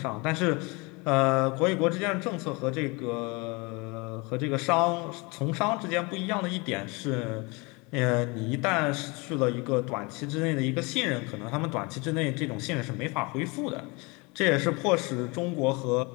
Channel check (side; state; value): right; quieter; 27.6 dB